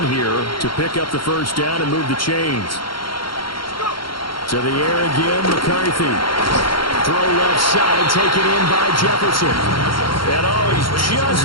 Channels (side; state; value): right; late; 0.73 ms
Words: here to pick up the first down and move the chains. To the air again, McCarthy. Throw left side, taken in by Jefferson. And he's just